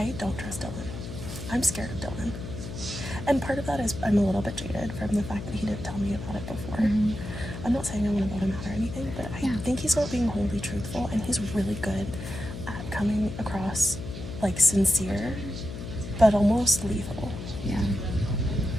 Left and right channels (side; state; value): left; noise; hum, 9 dB below the sound